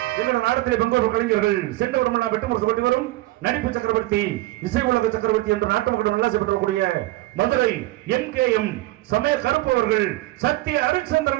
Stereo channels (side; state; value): left; quieter; 17.9 dB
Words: இந்த நாடகத்திலே பங்கேற்பு கலைஞர்கள் சென்ற வருடம் வெட்டுமுறுக்கப்பட்டு வரும் நடிப்பு சக்கரவர்த்தி இசை உலக சக்கரவர்த்தி என்று நாட்டு மக்கள் நல்லாசி பெற்றக்கூடிய மதுரை MKM சமய கருப்பு அவர்கள் சத்திய